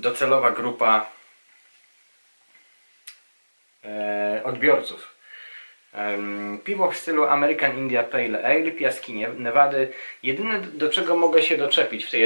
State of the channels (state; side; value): inverted; both; correlation -1.00